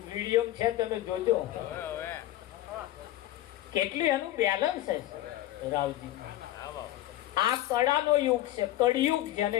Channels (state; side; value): quieter; right; 14.6 dB